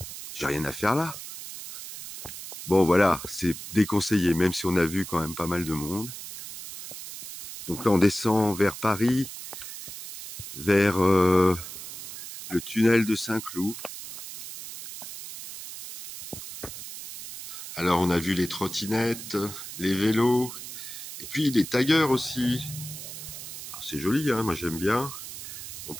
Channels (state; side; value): noise; right; hiss, 11 dB below the sound